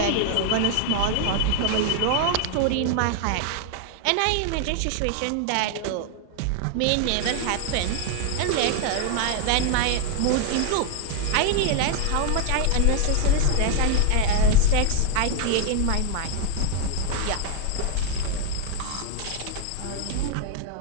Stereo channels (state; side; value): different; both; correlation 0.00